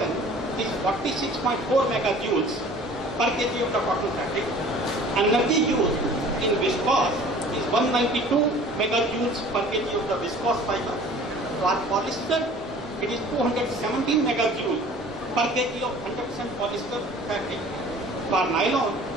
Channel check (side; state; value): both; normal; correlation 0.47